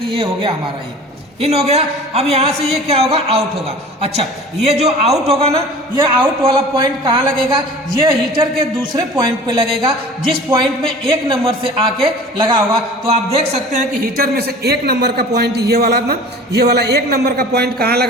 ये हो गया हमारा, ये इन हो गया। अब यहाँ से ये क्या होगा, आउट होगा। अच्छा, ये जो आउट होगा ना, ये आउट वाला पॉइंट कहाँ लगेगा, ये हीटर के दूसरे पॉइंट पे लगेगा, जिस पॉइंट में 1 नंबर से आके लगा होगा। तो आप देख सकते हैं कि हीटर में से 1 नंबर का पॉइंट ये वाला ना, ये वाला 1 नंबर का पॉइंट कहाँ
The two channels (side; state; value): both; normal; correlation 0.42